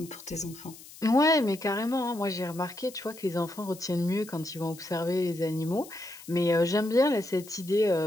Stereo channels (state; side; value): noise; left; hiss, 18 dB below the sound